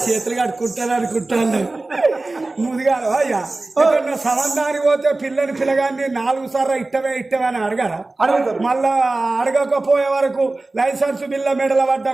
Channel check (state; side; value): quieter; left; 3.1 dB